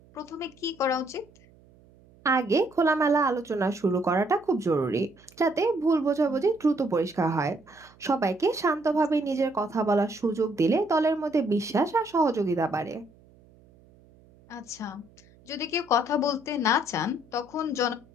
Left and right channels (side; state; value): right; noise; hum, 28 dB below the sound